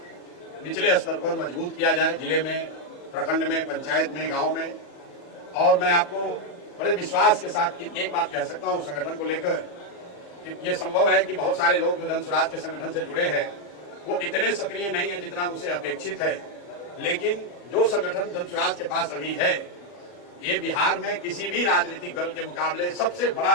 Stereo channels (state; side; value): late; right; 40 ms